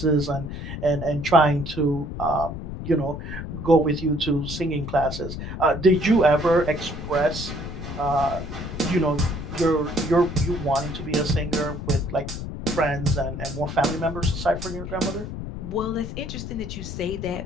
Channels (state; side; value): noise; left; rumble, 8 dB below the sound